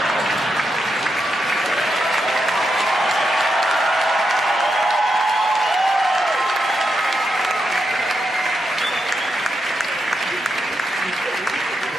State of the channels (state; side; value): normal; both; correlation 0.84